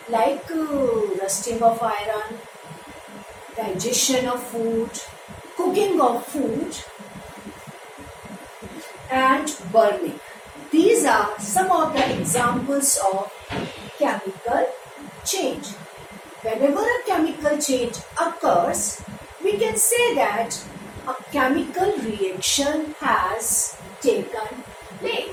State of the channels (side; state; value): both; identical; correlation 1.00